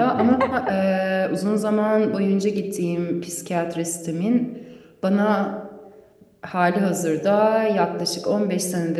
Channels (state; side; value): identical; both; correlation 1.00